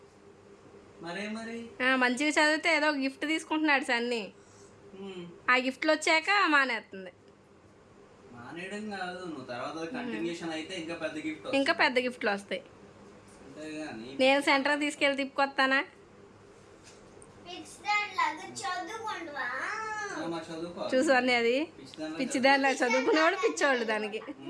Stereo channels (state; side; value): identical; both; correlation 1.00